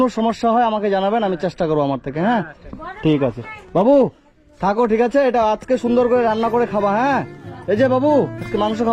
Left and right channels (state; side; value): identical; both; correlation 1.00